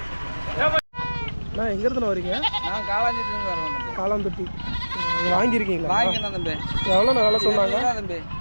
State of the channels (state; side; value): inverted; both; correlation -1.00